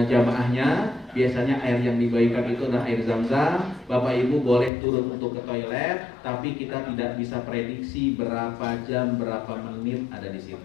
jamaahnya. Biasanya air yang dibagikan itu adalah air Zam-Zam. Bapak Ibu boleh turun untuk ke toilet, tapi kita tidak bisa prediksi berapa jam, berapa menit ada di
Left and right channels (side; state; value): right; drops out; at 4.7 s